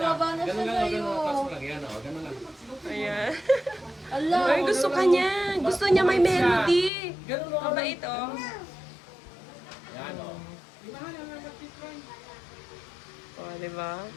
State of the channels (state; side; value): drops out; right; at 6.9 s